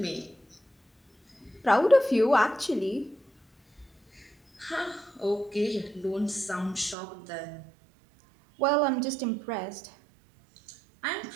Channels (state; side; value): drops out; left; at 7.0 s